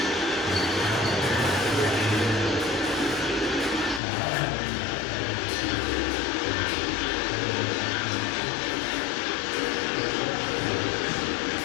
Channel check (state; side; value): drops out; right; at 4.0 s